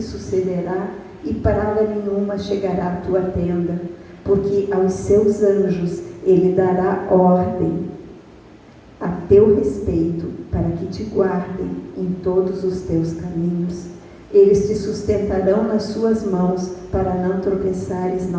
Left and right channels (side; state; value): both; identical; correlation 1.00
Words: e praga nenhuma chegará à tua tenda, porque aos seus anjos Ele dará ordem a teu respeito, para que te guardem em todos os teus caminhos. Eles te sustentarão nas suas mãos, para não tropeçares em